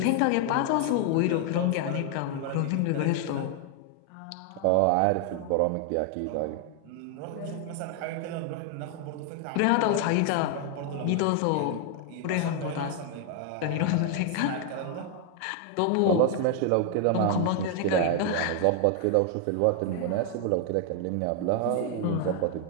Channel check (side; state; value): both; different; correlation 0.00